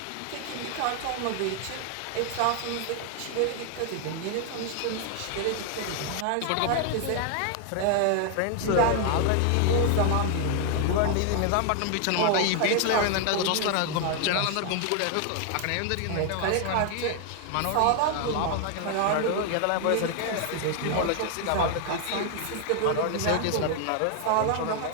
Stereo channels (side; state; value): both; different; correlation 0.00